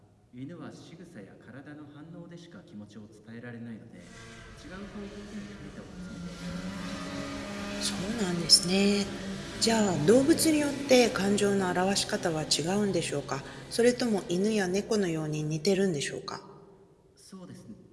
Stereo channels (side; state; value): both; identical; correlation 1.00